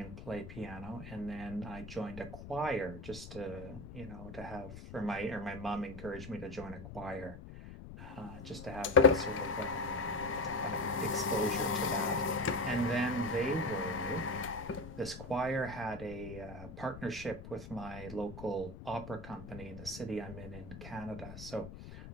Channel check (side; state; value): left; noise; rumble, 12 dB below the sound